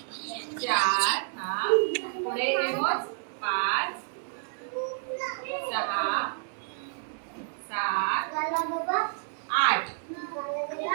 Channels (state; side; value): silent; left; digital silence